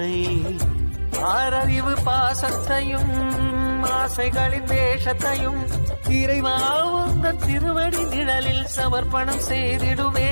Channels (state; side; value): inverted; both; correlation -1.00